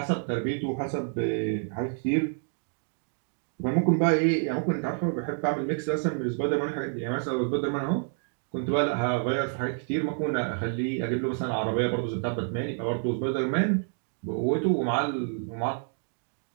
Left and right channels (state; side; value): silent; left; 59 dB below the other